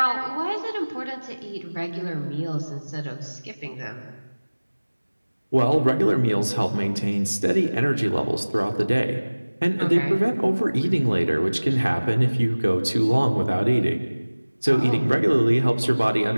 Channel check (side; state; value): both; inverted; correlation -1.00